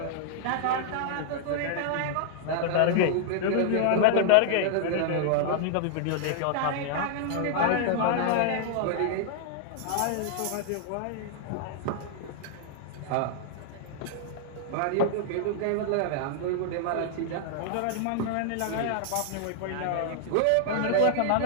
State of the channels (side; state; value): both; different; correlation -0.01